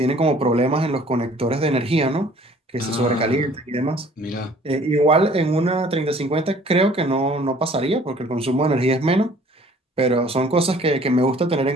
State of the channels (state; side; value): normal; both; correlation 0.54